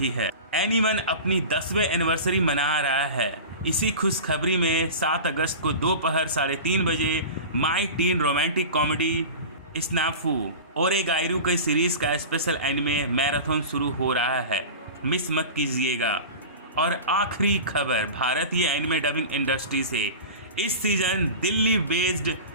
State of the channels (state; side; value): inverted; both; correlation -0.32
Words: है। एनीवन अपनी 10वें एनिवर्सरी मना रहा है। इसी खुशखबरी में 7 अगस्त को दोपहर 3:30 बजे माई टीन रोमांटिक कॉमेडी स्नाफू ओरेगाइरू के सीरीज का स्पेशल एनिमे मैराथन शुरू हो रहा है, मिस मत कीजिएगा। और आखिरी खबर भारतीय एनिमे डबिंग इंडस्ट्री से। इस सीजन दिल्ली बेस्ड